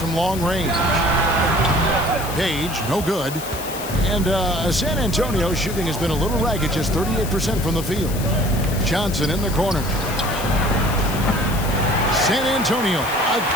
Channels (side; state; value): left; noise; hiss, 11 dB below the sound